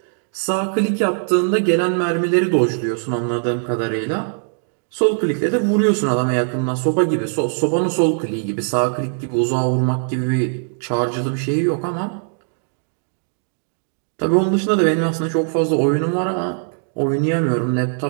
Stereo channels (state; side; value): silent; left; digital silence